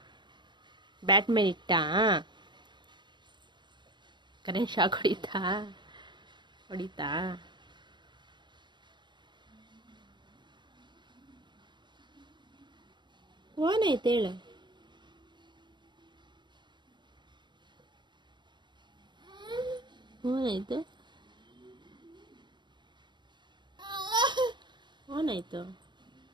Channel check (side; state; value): left; late; 0.22 ms